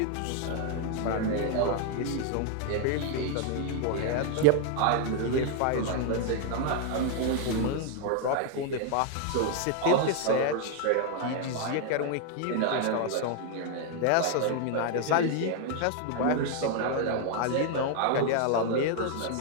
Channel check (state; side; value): different; both; correlation 0.00